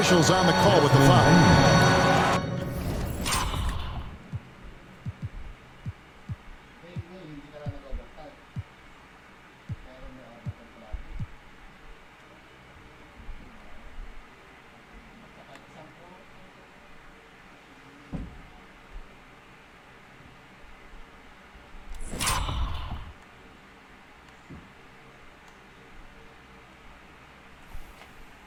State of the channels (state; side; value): identical; both; correlation 1.00